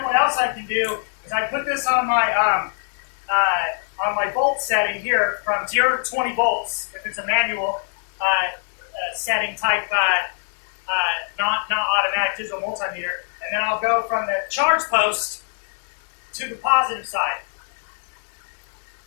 what else I can do is I put this on my volt setting here from 0 to 20 volts, if it's a manual setting type, not automatic digital multimeter, and then I'll go from the charge post to the positive side.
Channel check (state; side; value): silent; right; digital silence